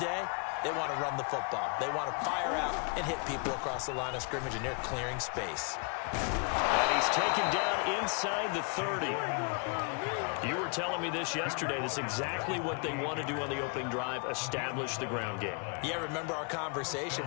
they want to run the football. They want to fire out and hit people across the line of scrimmage, and they're clearing space. And he's taken down inside the 30. You were telling me this yesterday. This is exactly what they want to do on the opening drive, establish the ground game. Yeah, remember our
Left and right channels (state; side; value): quieter; right; 36.3 dB